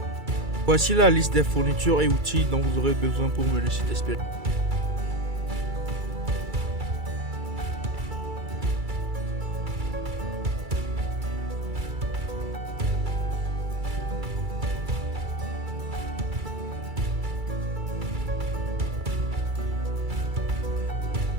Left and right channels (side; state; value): left; late; 2.3 ms